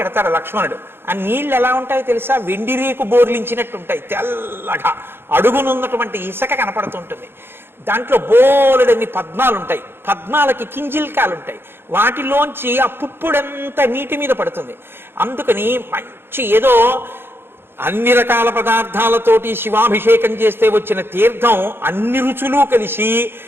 ఎడతాడు లక్ష్మణుడు. ఆ నీళ్ళు ఎలా ఉంటాయో తెలుసా? వెండి రేకు బోర్లించినట్టు ఉంటాయి, తెల్లగా. అడుగునున్నటువంటి ఇసుక కనపడుతుంటుంది. దాంట్లో బోలెడన్ని పద్మాలు ఉంటాయి. పద్మాలకి కింజిల్కాలు ఉంటాయి. వాటిలోంచి ఆ పుప్పుడంతా నీటి మీద పడుతుంది. అందుకని మంచి ఏదో అన్ని రకాల పదార్థాలతోటి శివాభిషేకం చేస్తే వచ్చిన తీర్థం అన్ని రుచులు కలిసి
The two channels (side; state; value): left; late; 0.11 ms